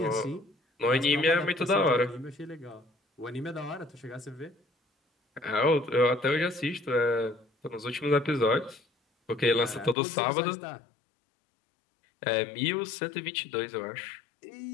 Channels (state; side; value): drops out; right; at 10.0 s